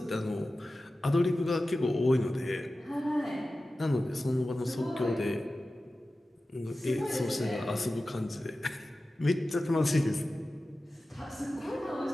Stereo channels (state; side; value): normal; both; correlation 0.95